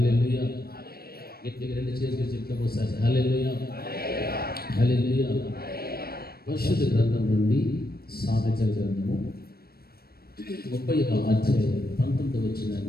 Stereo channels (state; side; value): late; right; 0.44 ms